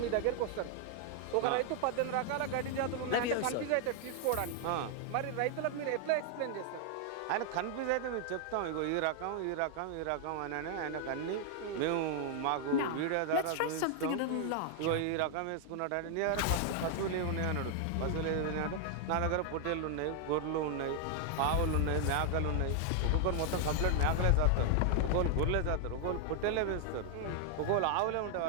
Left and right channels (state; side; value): different; both; correlation 0.00